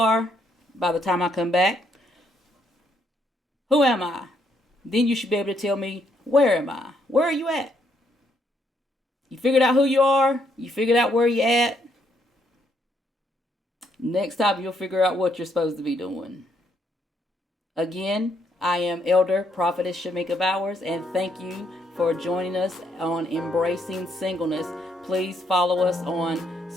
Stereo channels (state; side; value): normal; both; correlation 0.73